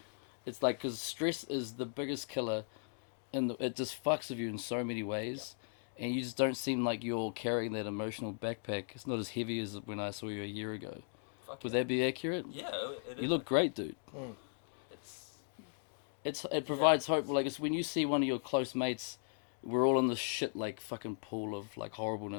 It's like, because stress is the biggest killer, and it just fucks with you in so many ways, and you just don't seem like you're carrying that emotional backpack. It's not as heavy as when I saw you a year ago. Fuck Would yeah. that be accurate? Yeah, it is. You look great, dude. It's It provides hope. Like, it's when you see one of your close mates, we're all in this shit like fucking pool of like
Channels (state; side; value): silent; right; digital silence